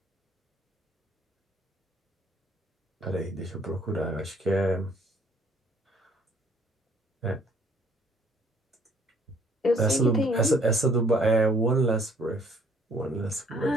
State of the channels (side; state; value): both; normal; correlation 0.61